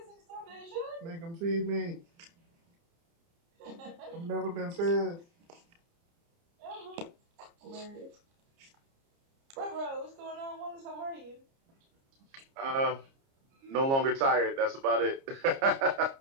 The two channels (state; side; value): late; left; 30 ms